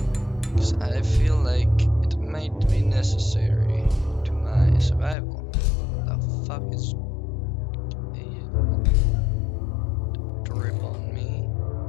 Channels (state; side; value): drops out; right; at 5.2 s